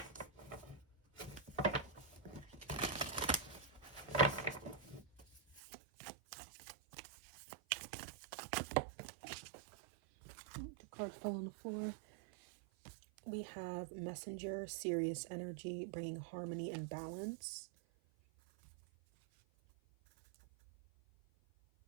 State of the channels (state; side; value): drops out; left; at 5.6 s